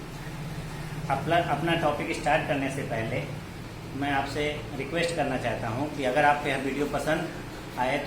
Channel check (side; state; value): both; identical; correlation 1.00